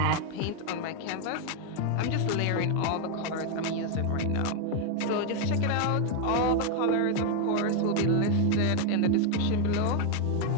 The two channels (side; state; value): both; different; correlation 0.01